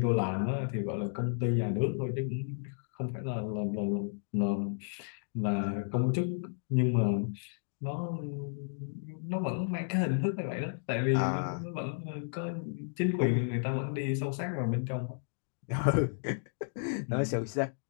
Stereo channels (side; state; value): right; silent; digital silence